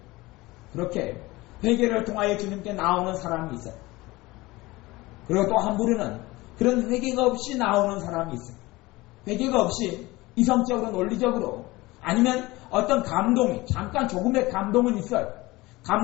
그렇게 회개를 통하여 주님께 나오는 사람이 있어요. 그리고 또 한 부류는 그런 회개가 없이 나오는 사람이 있어요. 회개가 없이 이성적으로 논리적으로 아니면 어떤 감동이 잠깐 조금의 감동은 있어요.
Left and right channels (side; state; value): right; quieter; 20.7 dB